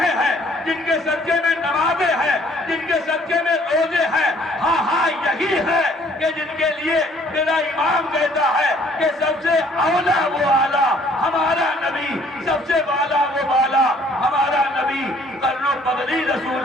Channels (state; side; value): normal; both; correlation 0.59